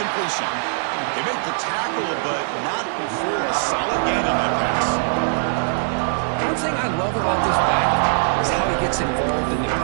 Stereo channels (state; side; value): silent; left; digital silence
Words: They make the tackle, but not before a solid gain on that pass. One thing I love about this back is how he gets involved in the